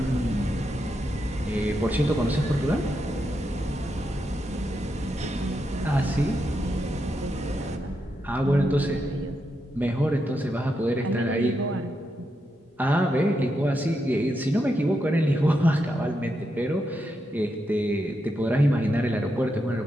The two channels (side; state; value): both; normal; correlation 0.84